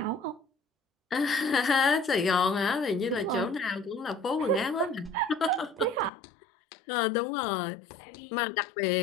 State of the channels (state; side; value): drops out; right; at 6.1 s